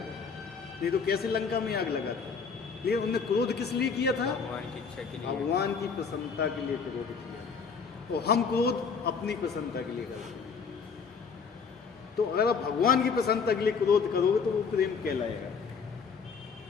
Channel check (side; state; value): right; quieter; 5.6 dB